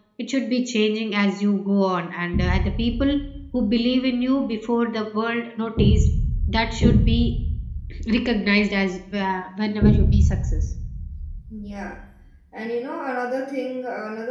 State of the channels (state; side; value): identical; both; correlation 1.00